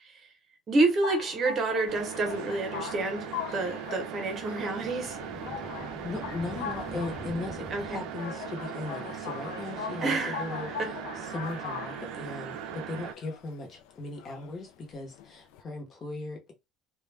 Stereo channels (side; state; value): both; normal; correlation 0.57